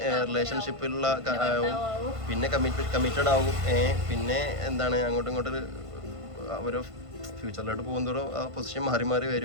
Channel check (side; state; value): left; late; 1.5 ms